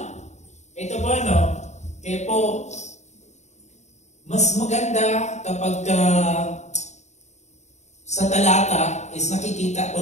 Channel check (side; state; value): right; late; 0.33 ms